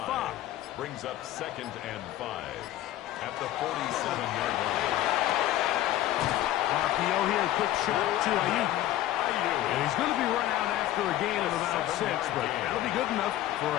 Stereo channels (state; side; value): quieter; right; 13.9 dB